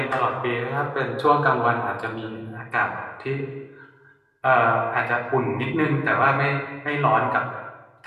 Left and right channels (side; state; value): both; identical; correlation 1.00